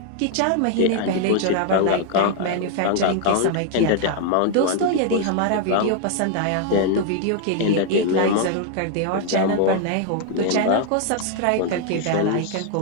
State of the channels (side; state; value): both; different; correlation 0.00